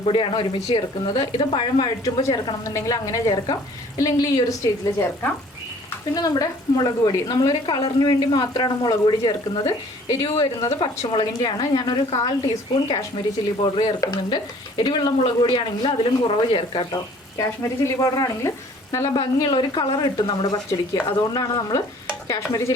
ഒരുമിച്ച് ചേർക്കുന്നത്. ഇത് പഴം വഴറ്റുമ്പോൾ ചേർക്കണം എന്നുണ്ടെങ്കിൽ അങ്ങനെ ചേർക്കാം, ഇല്ലെങ്കിൽ ഈ ഒരു സ്റ്റേജിൽ ചേർക്കാം. പിന്നെ നമ്മുടെ മുളക് പൊടി, നമ്മളൊരു കളറിന് വേണ്ടി മാത്രമാണ് മുളക് പൊടി ചേർക്കുന്നത്. എരിവ് വരുന്നത് പച്ചമുളകിൻ്റെയാണ്. ഞാനൊരു 1/4 ടീസ്പൂൺ കാശ്മീരി ചില്ലി പൗഡർ ചേർക്കുന്നുണ്ട്. എരിവുള്ള മുളക് പൊടിയാണെങ്കിൽ അതിലും കുറവ് ചേർക്കാം കേട്ടോ. കാശ്മീരി ചില്ലി പൗഡർ ആണെങ്കിൽ നല്ല ഭംഗിയുള്ള ഒരു കളർ കിട്ടും നമ്മുടെ പച്ചടിക്ക്. അതുകൊണ്ടാണ് നമ്മൾ കാശ്മീരി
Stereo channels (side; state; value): both; normal; correlation 0.54